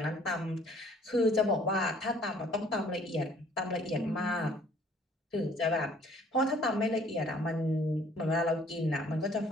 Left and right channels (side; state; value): both; normal; correlation 0.58